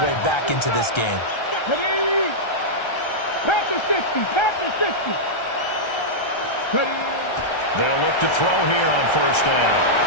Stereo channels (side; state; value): right; late; 1.3 ms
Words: way back into this game. Ready? Pat the 60, pat the 60. Ready? They'll look to throw here on first down.